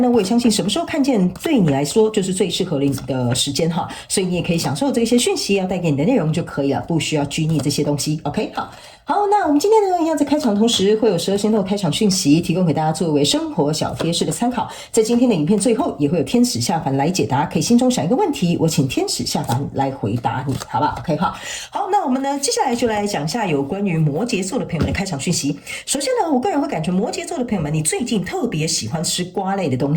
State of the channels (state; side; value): identical; both; correlation 1.00